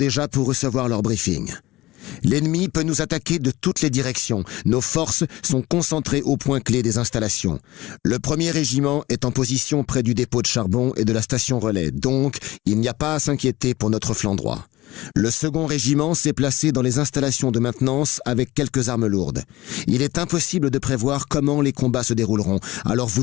pour recevoir leur briefing. L'ennemi peut nous attaquer de toutes les directions. Nos forces sont concentrées au point clé des installations. Le 1er régiment est en position près du dépôt de charbon et de la station relais. Donc, il n'y a pas à s'inquiéter pour notre flanc droit. Le 2e régiment s'est placé dans les installations de maintenance avec quelques armes lourdes. Il est impossible de prévoir comment les combats se dérouleront, alors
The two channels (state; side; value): quieter; right; 18.3 dB